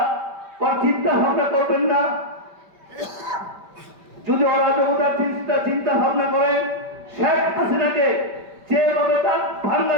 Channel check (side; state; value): left; late; 5.2 ms